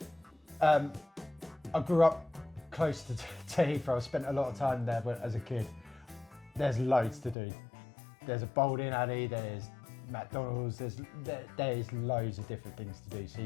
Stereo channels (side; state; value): right; drops out; at 7.4 s